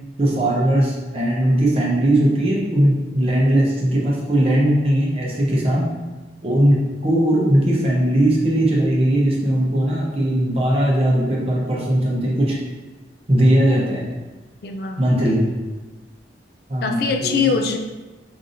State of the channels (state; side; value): normal; both; correlation 0.83